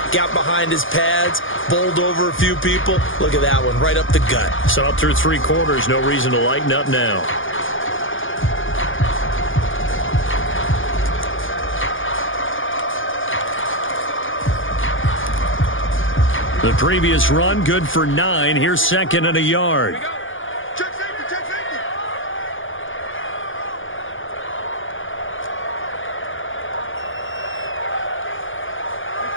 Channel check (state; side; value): late; right; 0.58 ms